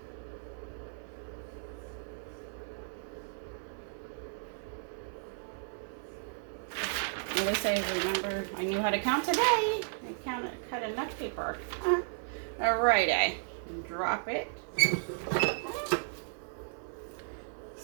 Now they say, remember, I knew how to count today. I cut enough paper. Alrighty, drop it.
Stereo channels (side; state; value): left; silent; 55 dB below the other